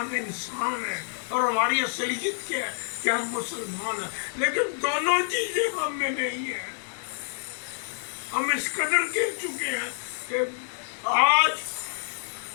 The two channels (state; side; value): silent; right; digital silence